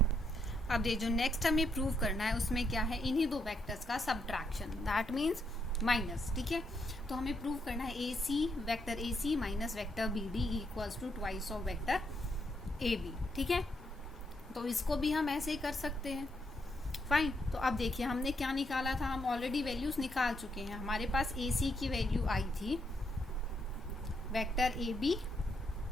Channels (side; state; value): both; normal; correlation 0.77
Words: अब ये जो नेक्स्ट हमें प्रूव करना है उसमें क्या है, इन्हीं दो वेक्टर्स का सब्ट्रैक्शन, दैट मीन्स माइनस, ठीक है। तो हमें प्रूव करना है vector AC minus vector BD equals to twice of vector AB, ठीक है। तो इसको भी हम ऐसे ही कर सकते हैं, फाइन। तो अब देखिए हमने क्या निकाला था, हम ऑलरेडी वैल्यूज निकाल चुके हैं। हमारे पास AC की वैल्यू आई थी vector AB